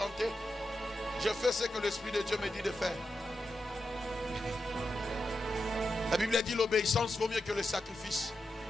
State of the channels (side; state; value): both; normal; correlation 0.88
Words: Je fais ce que l'Esprit de Dieu me dit de faire. La Bible dit l'obéissance vaut mieux que le sacrifice.